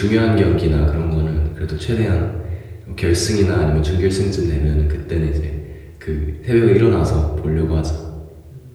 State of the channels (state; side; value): identical; both; correlation 1.00